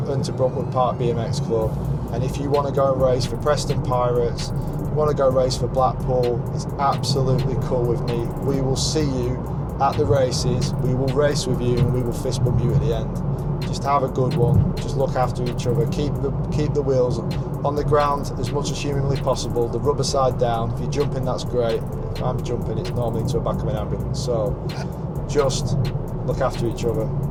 Park BMX Club, and if you want to go and race for Preston Pirates, you want to go race for Blackpool, it's absolutely cool with me. We will see you at the races, we will race with you, and we will fist bump you at the end. Just have a good one, just look after each other, keep the wheels on the ground as much as humanly possible, the rubber side down. If you're jumping, that's great. If I'm jumping, it's normally into the back of an ambulance. So just look after each other,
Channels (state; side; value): identical; both; correlation 1.00